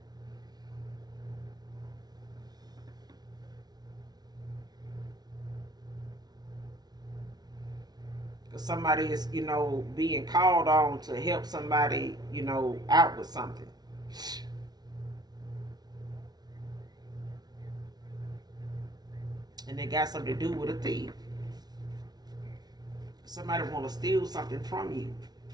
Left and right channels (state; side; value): late; left; 0.19 ms